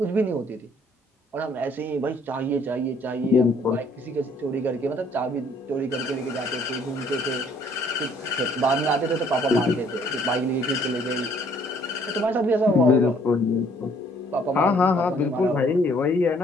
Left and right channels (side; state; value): both; normal; correlation 0.62